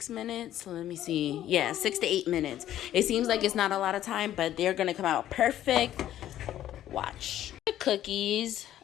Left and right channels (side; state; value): right; quieter; 12.3 dB